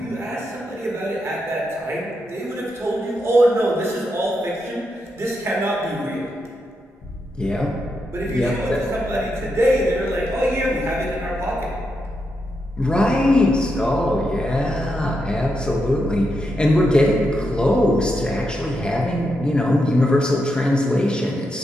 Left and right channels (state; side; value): normal; both; correlation 0.84